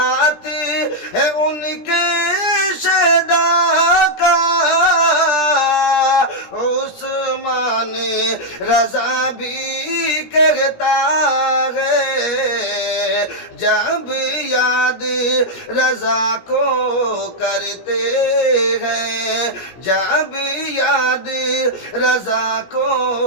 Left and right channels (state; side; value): late; right; 17 ms